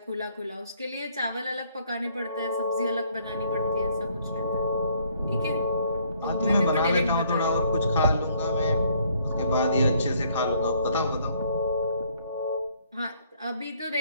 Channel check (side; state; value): both; inverted; correlation -0.65